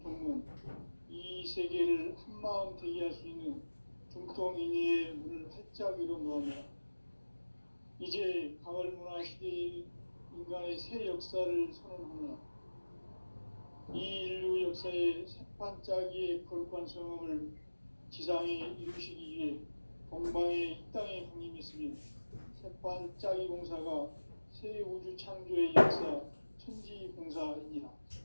이 세계를 한마음 되게 할 수 있는 중통인의의 문을 활짝 열어놓으며 이제 가을문화 시대의 인간의 새 역사를 선언하노라. 이 인류 역사의 새반짝이의 거룩한 성음을 지상에 이루시기 위해 동방의 이 땅에 강림했으며 새반짝이 공사가 새 우주 창조의 역사 천지공사입니다.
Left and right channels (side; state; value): both; inverted; correlation -1.00